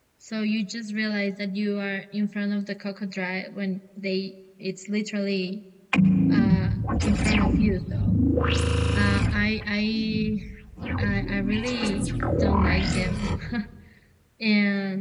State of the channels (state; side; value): identical; both; correlation 1.00